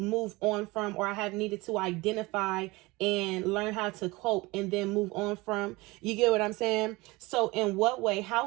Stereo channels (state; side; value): quieter; left; 22.6 dB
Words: on from, or I have needed to identify and learn how to cope and then move on from. You get what I'm saying? So in what way,